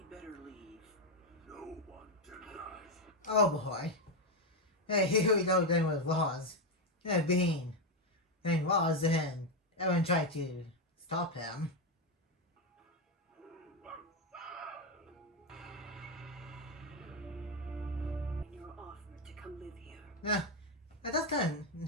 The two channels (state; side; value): normal; both; correlation 0.07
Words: better leave. No one denies. Oh boy. Hey, here we go again with Roz. Being Roz and everyone tried to stop him. And you're offered to come live here. That's kind